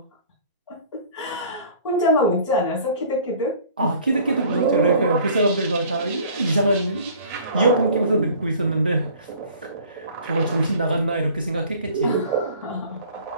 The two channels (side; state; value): both; inverted; correlation -0.49